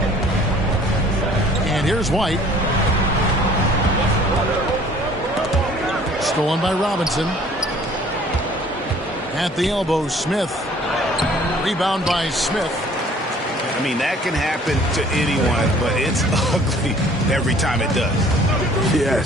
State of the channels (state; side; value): normal; both; correlation 0.53